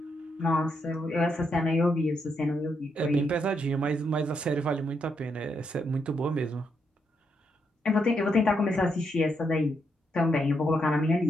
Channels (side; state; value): both; normal; correlation 0.79